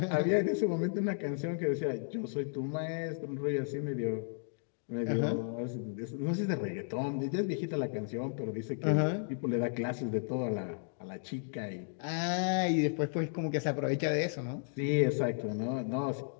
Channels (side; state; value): right; silent; digital silence